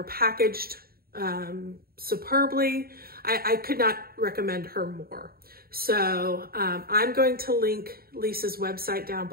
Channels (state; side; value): late; left; 0.44 ms